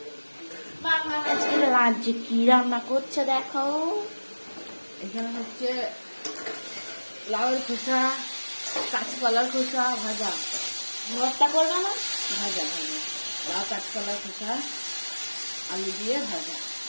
বাবা আজকে লাঞ্চে কি রান্না করছে দেখো। এখানে হচ্ছে লাউয়ের খোসা, কাঁচকলার খোসা ভাজা। ভর্তা করবে না? ভাজা ভাজা লাউ কাঁচকলার খোসা আলু দিয়ে ভাজা।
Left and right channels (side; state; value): both; inverted; correlation -1.00